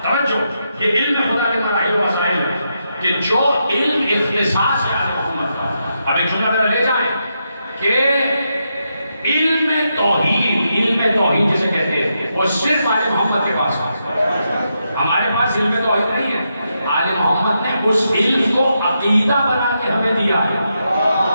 توجہ، یہ علم خدا کے مراحل و مسائل ہے کہ جو علم اختصاص ہے آل محمد کا۔ اب ایک جملہ میرا لے جائیں کہ علم توحید جسے کہتے ہیں وہ صرف آل محمد کے پاس ہے، ہمارے پاس علم توحید نہیں ہے۔ آل محمد نے اس علم کو عقیدہ بنا کے ہمیں دیا ہے۔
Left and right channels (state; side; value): inverted; both; correlation -0.83